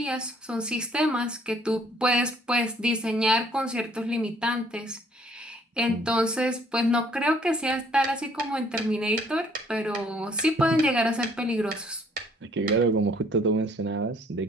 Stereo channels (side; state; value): both; normal; correlation 0.61